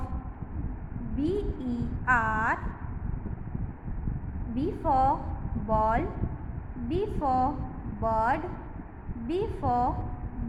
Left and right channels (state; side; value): identical; both; correlation 1.00